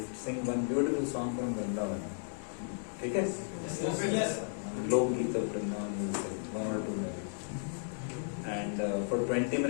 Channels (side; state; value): right; silent; digital silence